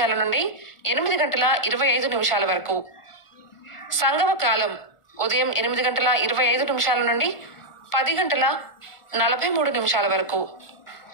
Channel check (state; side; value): late; right; 1.4 ms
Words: నుండి 8:25 వరకు. సంగమ కాలం ఉదయం 8:25 నుండి 10:43 వరకు.